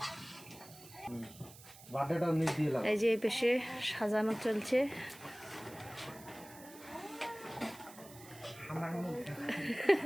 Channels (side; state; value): right; noise; hiss, 19 dB below the sound